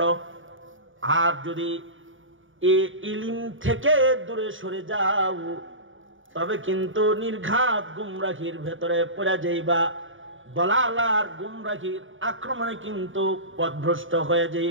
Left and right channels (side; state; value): left; late; 0.57 ms